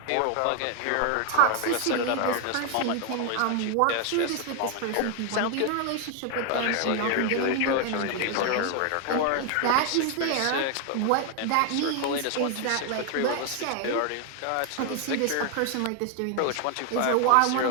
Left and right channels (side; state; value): both; different; correlation 0.00